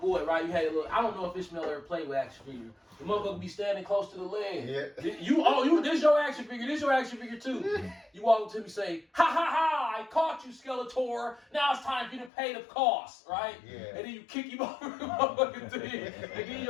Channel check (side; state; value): right; drops out; at 12.3 s